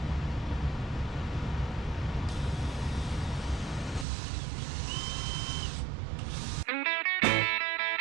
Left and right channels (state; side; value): drops out; left; at 4.0 s